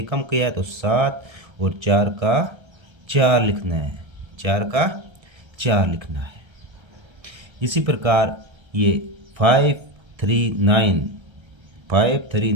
कम किया है तो 7 और 4 का 4 लिखना है, 4 का 4 लिखना है। इसी प्रकार ये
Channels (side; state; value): left; late; 1.3 ms